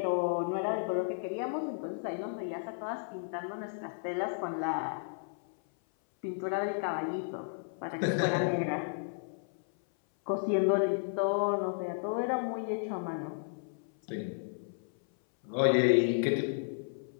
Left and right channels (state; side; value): silent; right; 56 dB below the other